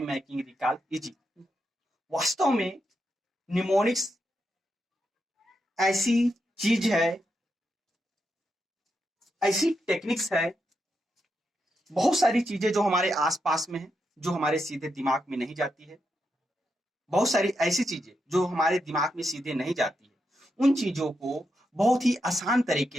making recall easy. वास्तव में mnemonics ऐसी चीज है, ऐसी techniques है, बहुत सारी चीजें जो हमारे आसपास में है, जो हमारे सीधे दिमाग में नहीं जाती है, बहुत सारी ऐसी चीजें जो हमारे दिमाग में सीधे नहीं जाती है, उन चीजों को बहुत ही आसान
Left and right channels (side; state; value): both; normal; correlation 0.84